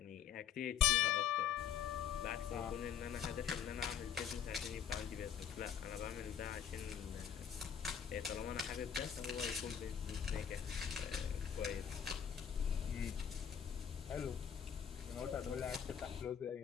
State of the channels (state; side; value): quieter; right; 8.5 dB